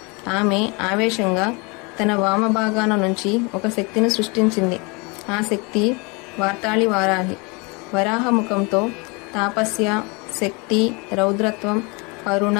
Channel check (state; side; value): quieter; right; 29.3 dB